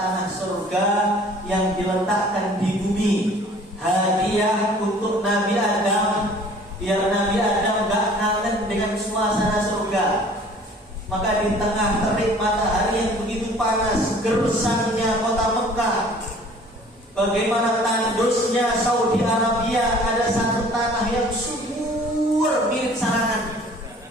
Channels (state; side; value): normal; both; correlation 0.51